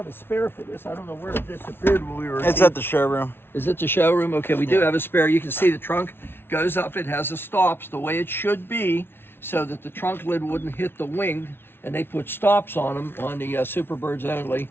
a spare for this. I don't know where it disappeared when we were. It's at the showroom. Is it the showroom? Okay, we do have a spare. You can see the trunk goes up. It has the stops the way it should be, so that the trunk lid wouldn't hit the wing. And they put stops on them on the Superbirds only.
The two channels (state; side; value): late; right; 0.11 ms